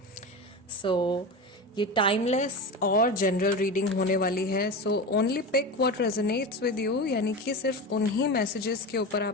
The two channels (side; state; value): both; normal; correlation 0.25